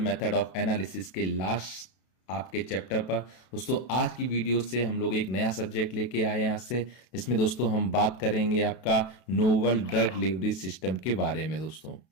ऑफ एनालिसिस के लास्ट आपके चैप्टर पर। दोस्तों आज की वीडियो से हम लोग एक नया सब्जेक्ट लेके आए हैं आज से, जिसमें दोस्तों हम बात करेंगे आपका नोवल ड्रग डिलीवरी सिस्टम के बारे में। दोस्तों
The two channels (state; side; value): late; right; 32 ms